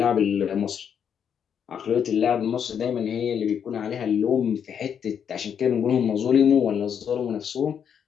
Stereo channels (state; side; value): quieter; right; 7.9 dB